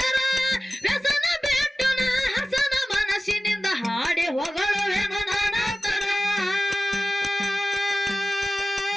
ವ್ಯಸನ ಬೆಟ್ಟನ ಹಸನ ಮನಸ್ಸಿನಿಂದ ಹಾಡಿ ಹೊಗಳವೆನು ನಾನತರ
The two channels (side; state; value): both; normal; correlation 0.97